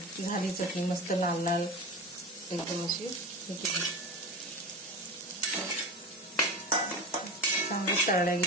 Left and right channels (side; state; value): both; normal; correlation 0.27